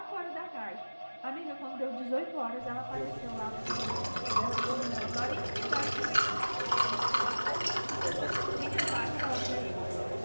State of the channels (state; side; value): inverted; both; correlation -1.00